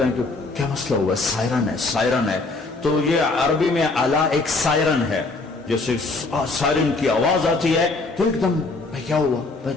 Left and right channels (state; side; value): quieter; right; 3.5 dB